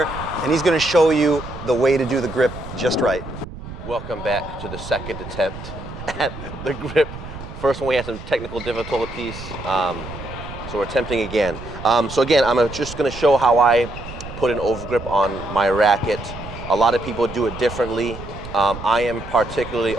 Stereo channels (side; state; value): right; noise; rumble, 12 dB below the sound